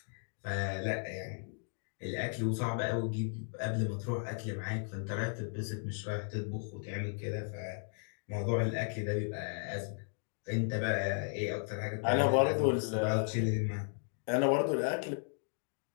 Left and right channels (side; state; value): right; silent; 54 dB below the other